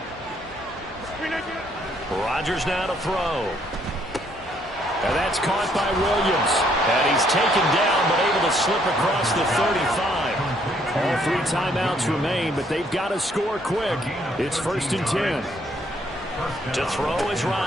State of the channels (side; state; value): both; normal; correlation 0.68